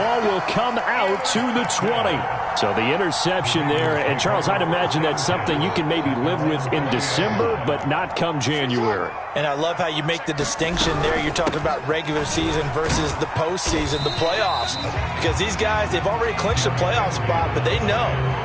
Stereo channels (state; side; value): identical; both; correlation 1.00